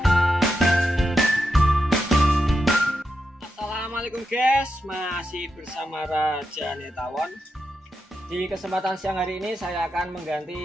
Assalamualaikum guys, masih bersama Raja Netawon. Di kesempatan siang hari ini saya akan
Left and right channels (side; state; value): both; normal; correlation 0.86